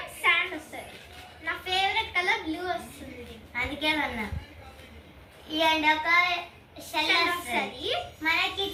శాండ్ వస్తుంది. నా ఫేవరెట్ కలర్ బ్లూ వస్తుంది, అందుకే అన్నా ఇవ్వండి. ఒక షెల్ వస్తుంది మనకి.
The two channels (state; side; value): identical; both; correlation 1.00